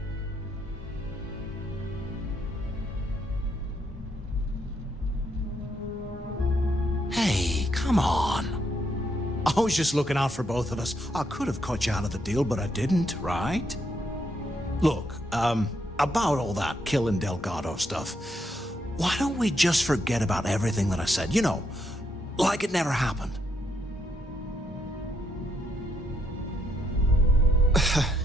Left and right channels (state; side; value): normal; both; correlation 0.76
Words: Hey, come on. I was just looking out for both of us. I could have cut you out of the deal, but I didn't, right? Look, about all that killing Delgado stuff, why don't we just forget about everything that I said? You know, like it never happened.